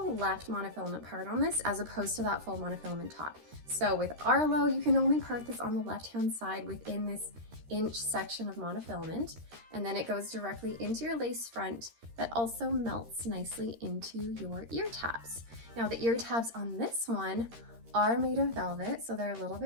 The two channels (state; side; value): late; left; 13 ms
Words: left monofilament part on this as opposed to that full monofilament top. So with Arlo, you can only part this on the left-hand side within this inch section of monofilament, and then it goes directly into your lace front that also melts nicely into your ear tabs. Now the ear tabs on this one are made of velvet, so they're a little